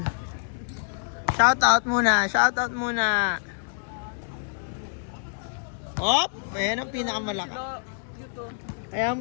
Shoutout muna, shoutout muna. Hop! Ayan ang pinakamalaka. Kaya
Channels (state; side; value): silent; right; digital silence